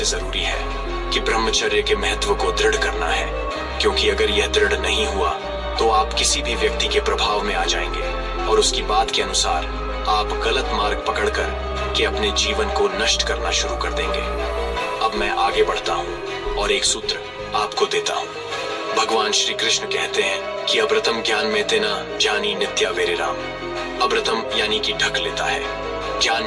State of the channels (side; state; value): both; identical; correlation 1.00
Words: जरूरी है कि ब्रह्मचर्य के महत्व को दृढ़ करना है, क्योंकि अगर यह दृढ़ नहीं हुआ तो आप किसी भी व्यक्ति के प्रभाव में आ जाएंगे और उसकी बात के अनुसार आप गलत मार्ग पकड़कर के अपने जीवन को नष्ट करना शुरू कर देंगे। अब मैं आगे बढ़ता हूँ और एक सूत्र आपको देता हूँ। भगवान श्री कृष्ण कहते हैं कि अब्रतम ज्ञान में तेना जानी नित्या वेरे राम। अब्रतम यानी कि ढक लेता है, ज्ञान